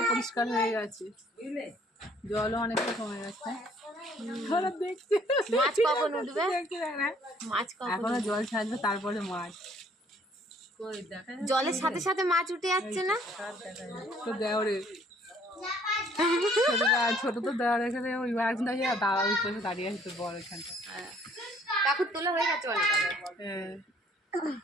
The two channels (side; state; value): both; normal; correlation 0.60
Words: পরিষ্কার হয়ে গেছে, বুঝলে, জলও অনেকটা কমে গেছে। মাছ কখন উঠবে? মাছ এখনো জল ছাড়বে, তারপরে মাছ। জলের সাথে সাথে মাছ উঠে যাচ্ছে না তো দেওরে ছোট তো দেওয়ার এখানে ওই একজন দাঁড়িয়ে, দাঁড়া ওই পাশে দাঁড়িয়ে আছে, তোর বড় এখানটা। কাকুর তোলা হয়ে গেছে অনেক। হ্যাঁ,